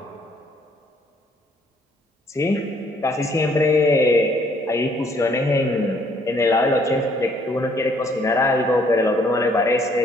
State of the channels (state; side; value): normal; both; correlation 0.64